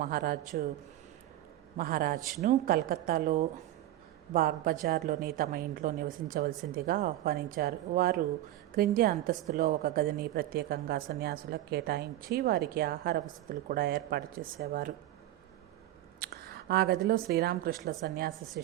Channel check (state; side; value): quieter; left; 14.3 dB